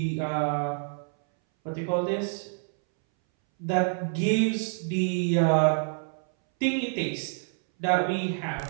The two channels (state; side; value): silent; left; 60 dB below the other